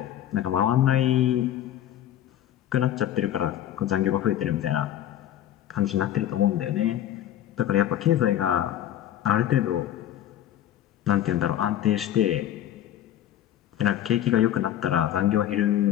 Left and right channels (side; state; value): right; quieter; 11.6 dB